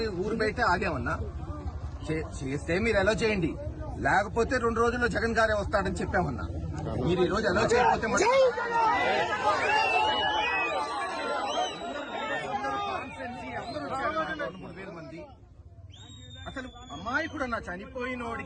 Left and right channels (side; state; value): both; identical; correlation 1.00